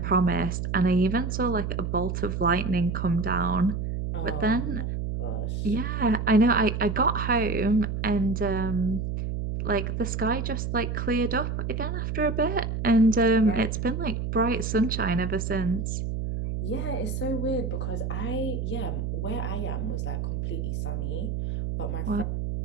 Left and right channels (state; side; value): noise; right; hum, 2 dB below the sound